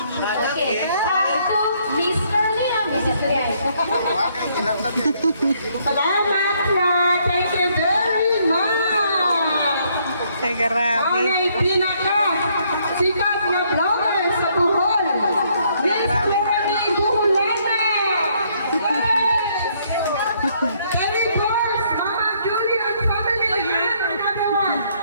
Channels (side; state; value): both; inverted; correlation -0.69